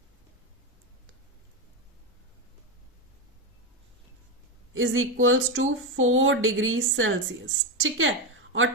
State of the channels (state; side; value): normal; both; correlation 0.11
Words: is equals to 4 degree Celsius. ठीक है, और